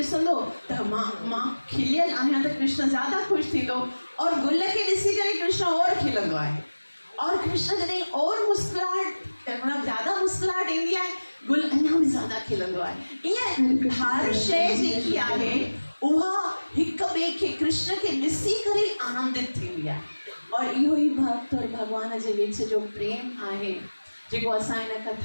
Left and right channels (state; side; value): inverted; both; correlation -1.00